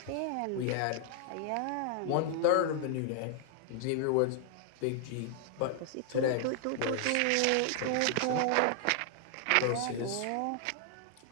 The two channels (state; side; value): different; both; correlation 0.00